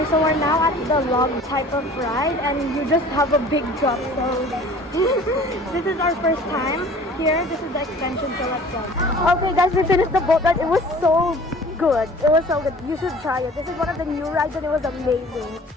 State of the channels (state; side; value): normal; both; correlation 0.47